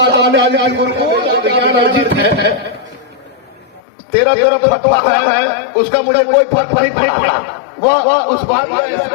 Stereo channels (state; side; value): drops out; right; at 3.8 s